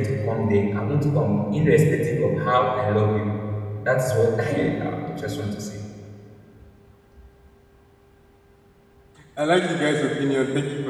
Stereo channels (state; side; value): identical; both; correlation 1.00